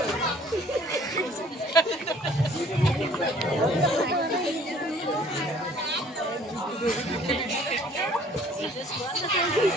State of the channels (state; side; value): normal; both; correlation 0.55